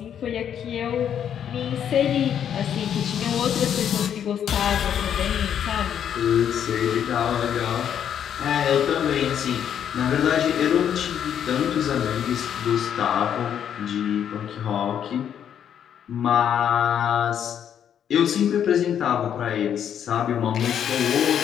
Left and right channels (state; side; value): quieter; right; 9.1 dB